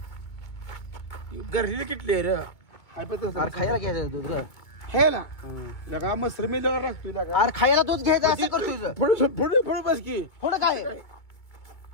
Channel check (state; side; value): late; right; 2.2 ms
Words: गरली किटली रे अरे खायला घ्यायचं दूध रे हे ना लगा मसर मी लगा लागतोय लगा अरे खायला दूध घ्यायचं असं करतोय पुढे बस की थोडं काय